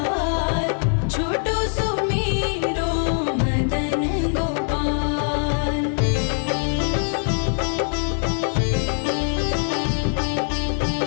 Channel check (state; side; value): silent; right; digital silence